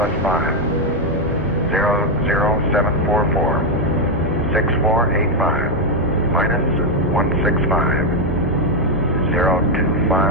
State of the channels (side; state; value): both; normal; correlation 0.04